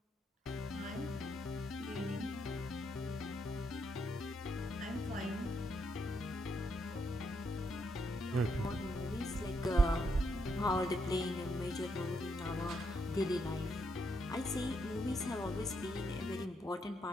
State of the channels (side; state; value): both; normal; correlation 0.78